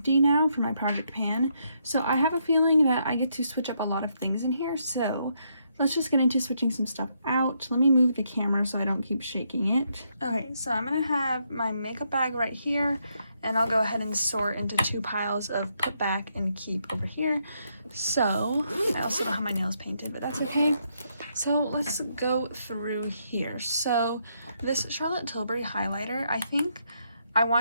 now for my project pan. So I have a feeling that I get to switch up a lot of things in here, so let's just get into switching some stuff out. Let me move the camera so I don't keep shaking it. Okay, so I'm gonna have my makeup bag right here, and I'll go ahead and sort into 2 piles of put back and keep over here. So, I also don't have my nails painted, but that's okay. So let's go through here. So this Charlotte Tilbury highlighter, I think I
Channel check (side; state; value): both; inverted; correlation -0.77